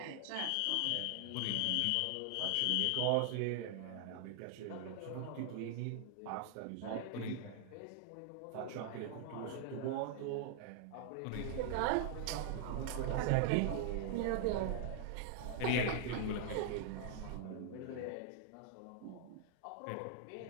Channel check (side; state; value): both; different; correlation -0.01